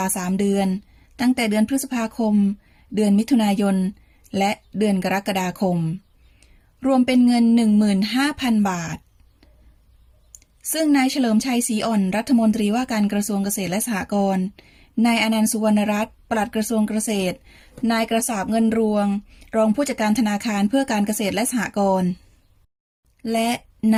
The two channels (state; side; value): identical; both; correlation 1.00